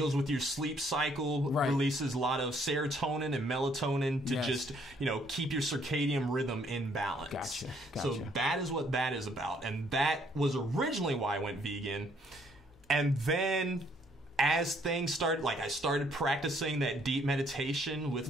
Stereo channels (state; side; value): normal; both; correlation 0.66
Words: with your sleep cycle, releases a lot of serotonin and melatonin to just, keep your circadian rhythm in balance. Gotcha. So that is what that is about. And that was originally why I went vegan. And then as things started, I started practicing that deep meditation with